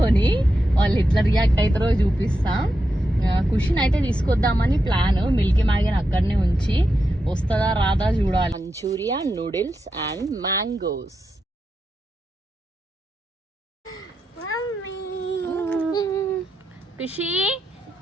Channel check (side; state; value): both; normal; correlation 0.87